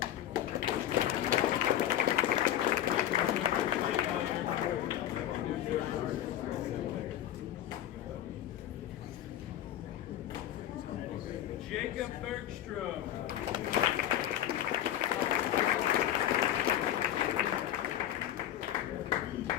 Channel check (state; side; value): quieter; right; 11.9 dB